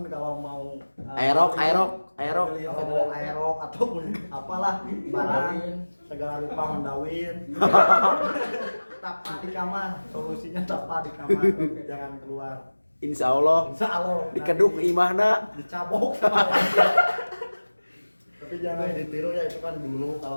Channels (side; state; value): both; inverted; correlation -1.00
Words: kalau mau Aerok. kalau mau aerok ataupun apalah barang segala rupa mendawin. Tapa di kamar, solusinya tapa di kamar, jangan keluar. Insya Allah Insya Allah dikeduk nanti imahna. dicabok sama tapi jangan ditiru ya, itu kan dulu.